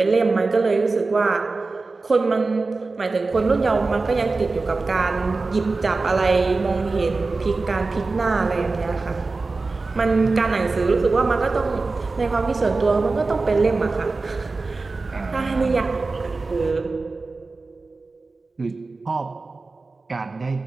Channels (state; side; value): quieter; left; 3.7 dB